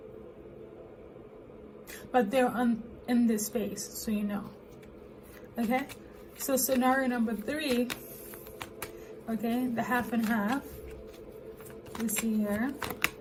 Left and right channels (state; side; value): identical; both; correlation 1.00